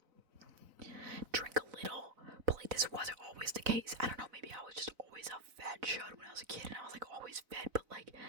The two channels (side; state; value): left; late; 4.0 ms